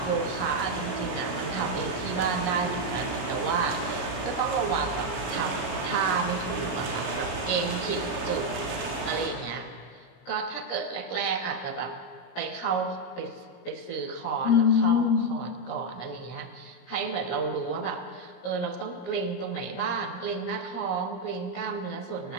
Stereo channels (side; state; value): right; late; 17 ms